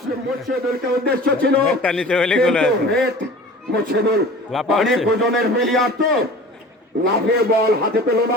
মুর্শিদুলকে উদ্দেশ্য ছিল, মুর্শিদুল অনেক ওজনের প্লেয়ার তো লাফিয়ে বল হাতে পেল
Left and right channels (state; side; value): normal; both; correlation 0.41